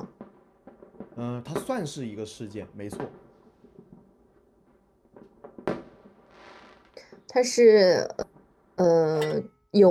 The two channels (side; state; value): both; identical; correlation 1.00